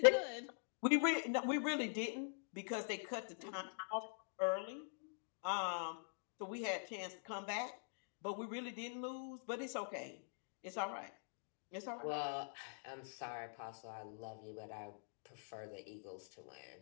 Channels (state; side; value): silent; right; digital silence